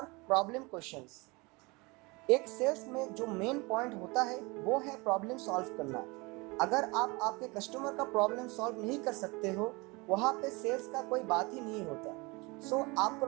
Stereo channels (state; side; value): quieter; left; 25.9 dB